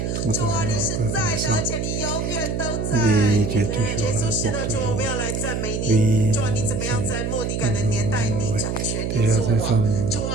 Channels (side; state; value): right; noise; hum, 1 dB below the sound